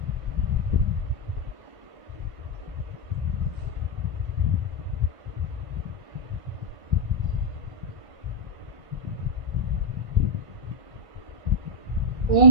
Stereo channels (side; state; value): left; late; 1.5 ms